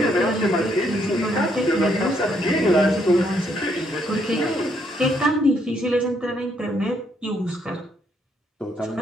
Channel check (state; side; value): normal; both; correlation 0.73